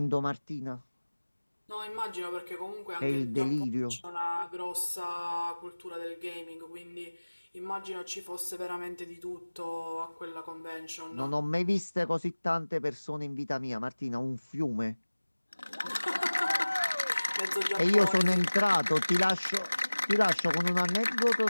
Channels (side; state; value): both; inverted; correlation -1.00